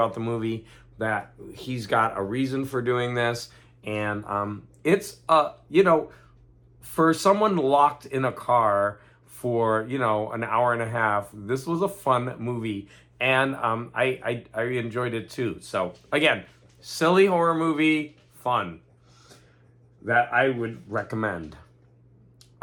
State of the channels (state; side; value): identical; both; correlation 1.00